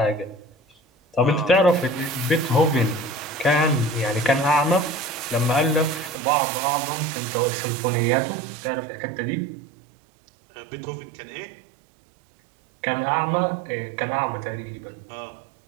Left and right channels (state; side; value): drops out; left; at 6.2 s